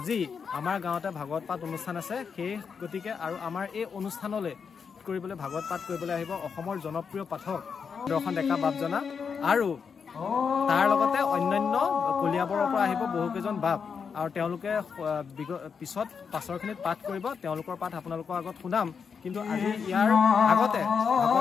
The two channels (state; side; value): quieter; right; 6.2 dB